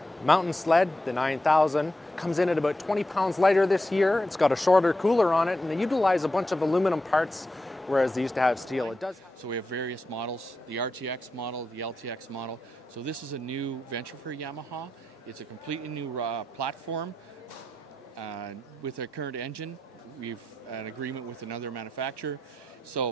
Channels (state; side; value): normal; both; correlation 0.87